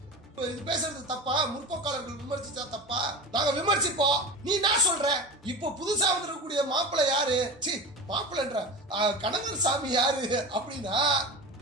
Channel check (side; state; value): both; normal; correlation 0.28